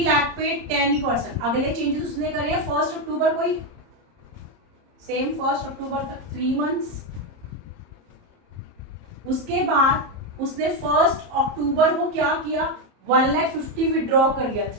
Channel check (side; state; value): left; late; 30 ms